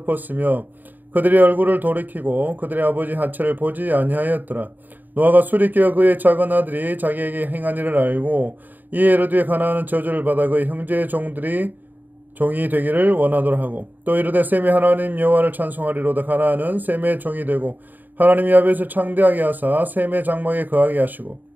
그들의 얼굴을 돌이키고 그들의 아버지 하체를 보지 아니하였더라. 노아가 술이 깨어 그의 작은 아들이 자기에게 행한 일을 알고, 이에 이르되 가나안은 저주를 받아 그의 형제의 종이 되기를 원하노라 하고, 또 이르되 셈이 하나님 여호와를 찬송하리로다. 가나안은 셈의 종이 되고 하나님이 야벳을 창대하게 하사 셈의 장막에 거하게 하시고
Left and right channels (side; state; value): left; late; 0.087 ms